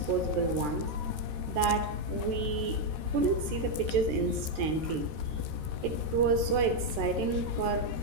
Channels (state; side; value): late; left; 13 ms